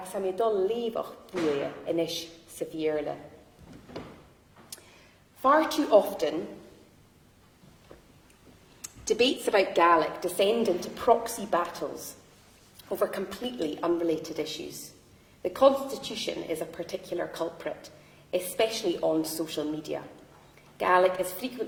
am dul levach buie inis severely. Far too often, debates about Gaelic descend into proxy battles over completely unrelated issues. The Constitution is a particular culprit, especially on social media. Gaelic is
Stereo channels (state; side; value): identical; both; correlation 1.00